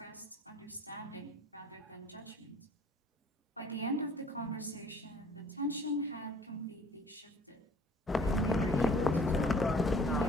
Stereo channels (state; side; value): normal; both; correlation 0.53